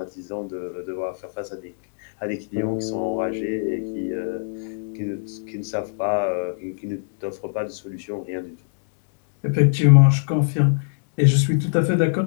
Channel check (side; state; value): right; silent; digital silence